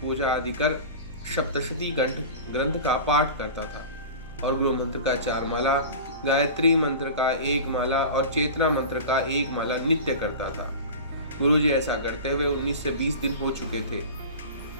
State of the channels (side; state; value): both; inverted; correlation -0.33